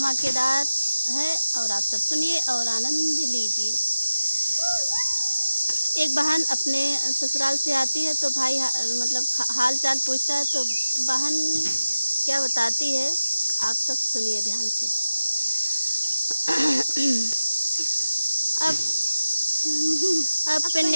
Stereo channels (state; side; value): inverted; both; correlation -0.95